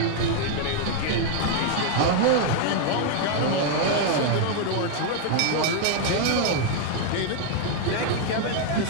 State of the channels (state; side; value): different; both; correlation 0.00